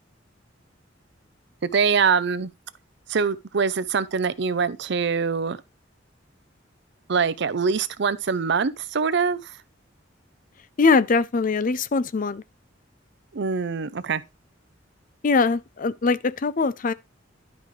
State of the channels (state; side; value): normal; both; correlation 0.04